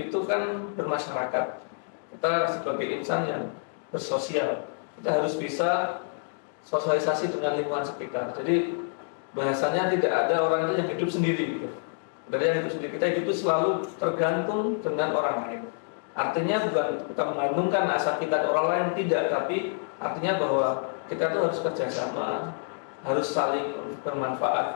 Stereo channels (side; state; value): right; silent; digital silence